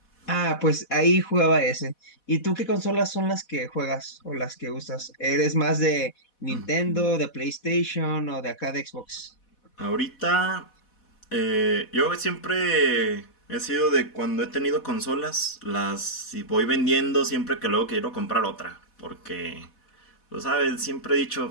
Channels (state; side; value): late; right; 4.1 ms